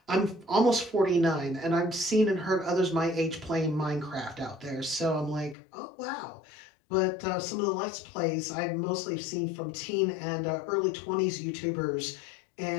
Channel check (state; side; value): drops out; right; at 5.6 s